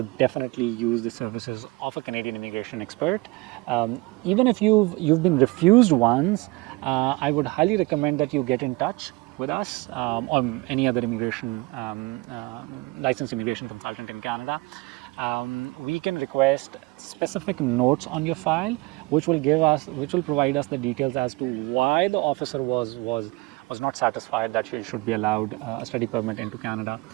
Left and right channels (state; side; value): quieter; left; 24.2 dB